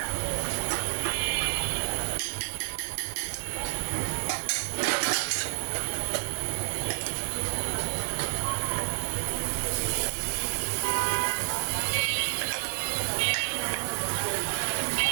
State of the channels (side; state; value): left; silent; digital silence